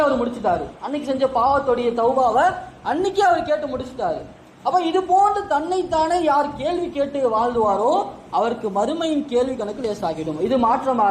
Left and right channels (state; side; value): identical; both; correlation 1.00